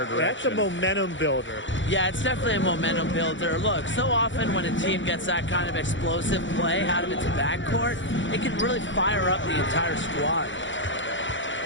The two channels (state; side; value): late; right; 0.55 ms